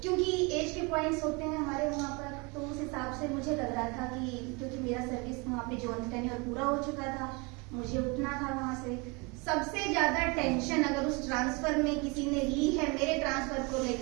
क्योंकि एज के पॉइंट्स होते हैं हमारे वहाँ पर, तो उस हिसाब से मुझे लग रहा था कि क्योंकि मेरा सर्विस वहाँ पे जॉइन टेन्योर पूरा हो चुका था, मुझे उठना था वहाँ से। सबसे ज्यादा टेंशन अगर उस ट्रांसफर में किसी ने ली है मेरे ट्रांसफर को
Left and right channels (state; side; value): quieter; left; 28.9 dB